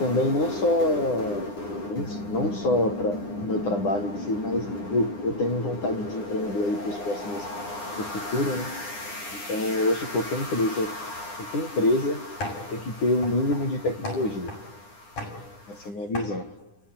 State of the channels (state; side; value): late; right; 9.9 ms